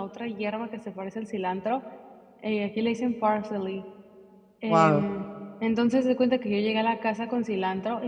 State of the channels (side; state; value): both; identical; correlation 1.00